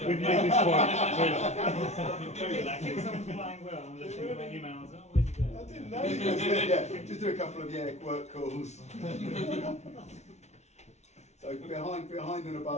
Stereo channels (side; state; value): right; late; 0.32 ms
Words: this point. If someone's flying well and just think about emails, oh, where's he going? I didn't know. Just do a couple of work calls. So behind and